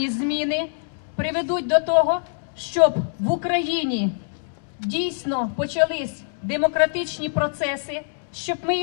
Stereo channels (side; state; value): right; silent; digital silence